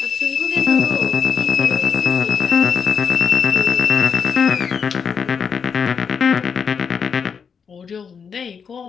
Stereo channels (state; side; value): quieter; right; 6.4 dB